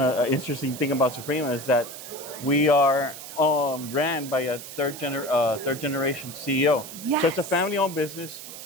is that we are ran by a third generation CEO. Yes. So it's a family-owned business.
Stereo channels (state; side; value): noise; right; hiss, 12 dB below the sound